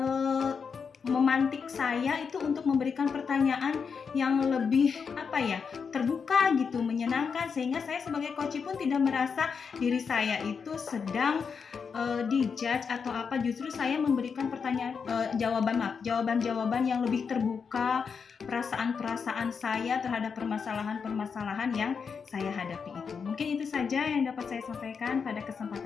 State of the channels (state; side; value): quieter; right; 5.9 dB